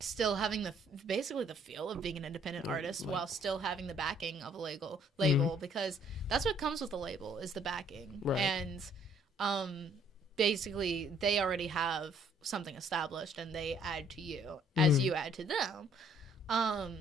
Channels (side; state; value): both; normal; correlation 0.62